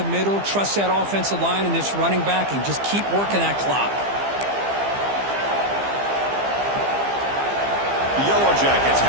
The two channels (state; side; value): late; left; 15 ms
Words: middle. Trust that offensive line and this running back and just keep working that clock. The Yellow Jackets